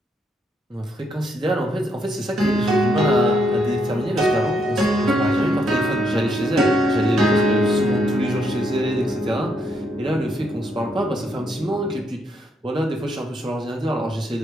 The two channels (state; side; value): normal; both; correlation 0.76